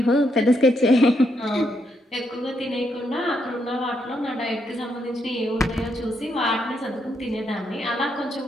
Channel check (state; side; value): normal; both; correlation 0.78